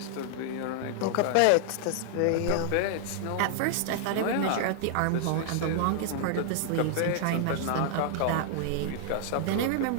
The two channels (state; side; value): different; both; correlation -0.01